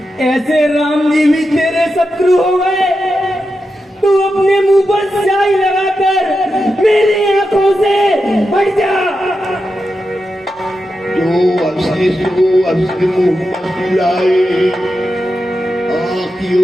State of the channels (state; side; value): normal; both; correlation 0.89